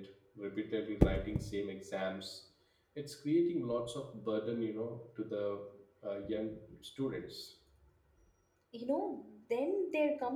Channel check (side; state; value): both; identical; correlation 1.00